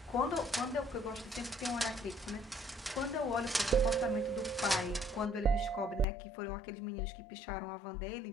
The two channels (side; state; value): right; drops out; at 6.1 s